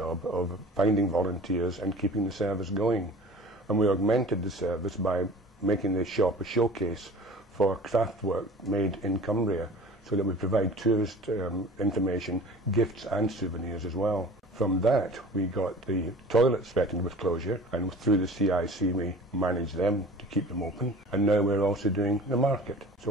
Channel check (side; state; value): both; normal; correlation 0.43